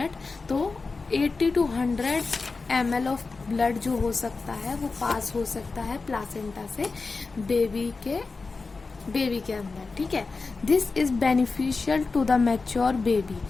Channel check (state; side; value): quieter; right; 4.1 dB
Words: तो 80 to 100 ml ऑफ ब्लड जो हो सकता है वो पास हो सकता है प्लासेंटा से बेबी के अंदर। ठीक है, this is beneficial to the mature baby,